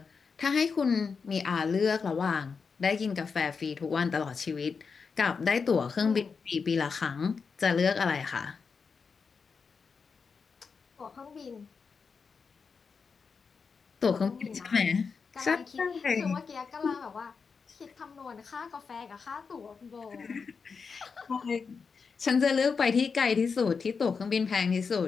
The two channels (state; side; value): quieter; right; 5.4 dB